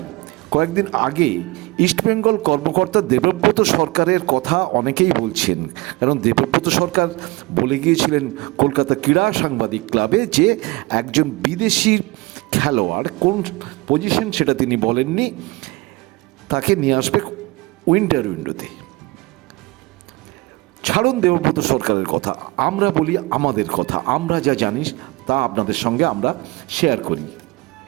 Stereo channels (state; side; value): quieter; left; 22.6 dB